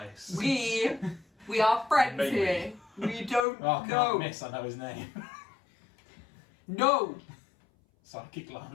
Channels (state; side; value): drops out; right; at 3.5 s